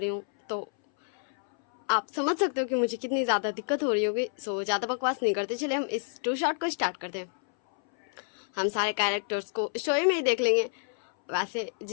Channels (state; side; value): silent; right; 59 dB below the other